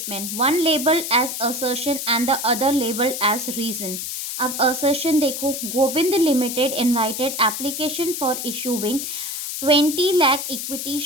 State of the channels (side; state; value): left; noise; hiss, 5 dB below the sound